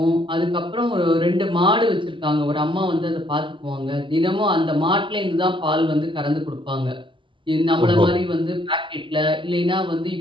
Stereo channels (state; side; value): late; left; 0.24 ms